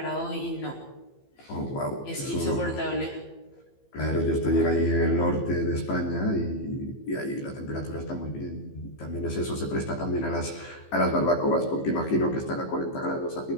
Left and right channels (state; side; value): late; right; 15 ms